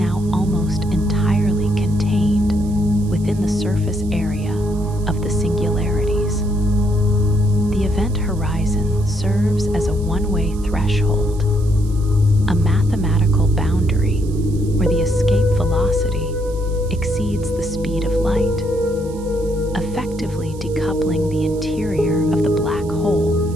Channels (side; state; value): right; noise; hiss, 22 dB below the sound